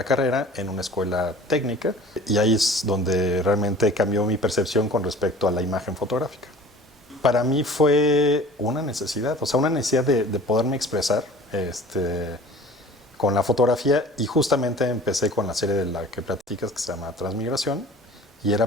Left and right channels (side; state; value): both; normal; correlation 0.45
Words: carrera en una escuela técnica y ahí es donde realmente cambió mi percepción con respecto a la imagen fotográfica. Para mí fue una necesidad, o sea, una necesidad de poderme expresar con la fotografía y justamente empecé con la serie de la que platicas que se llama Transmigración y era